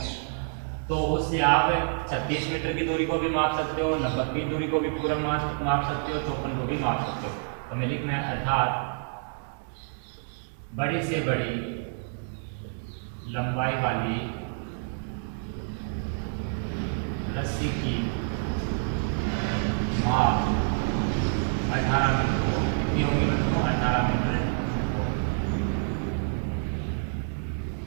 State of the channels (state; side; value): silent; left; digital silence